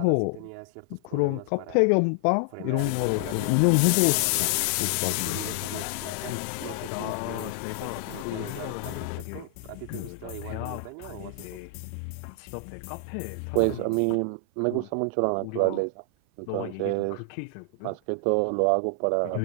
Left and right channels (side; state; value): both; different; correlation 0.00